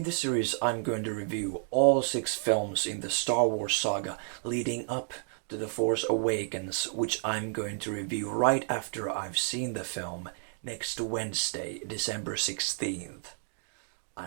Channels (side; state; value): left; silent; 57 dB below the other